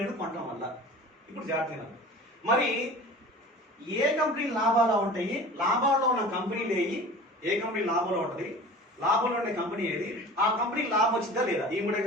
కొనడం వల్ల. ఇప్పుడు జాగ్రత్తగా మరి ఏ కంపెనీ లాభాలు ఉంటాయి, లాభాల్లో ఉన్న కంపెనీలు ఏవి, ఏ కంపెనీ లాభంలో ఉంటుంది, లాభంలో ఉండే కంపెనీ ఏది, ఆ కంపెనీకి లాభం వచ్చిందా లేదా, ఈ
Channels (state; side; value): normal; both; correlation 0.40